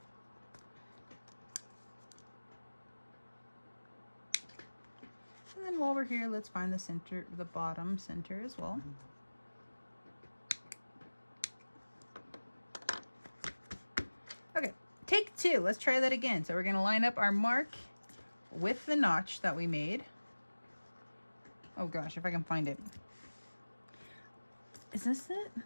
And then while we're here, let's find the center, the bottom center as well. Okay, take 2. Let's try that again. So we're going to line up our mark with the notch that we made. Oh gosh, if I can find it. Is this it?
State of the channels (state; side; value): inverted; both; correlation -1.00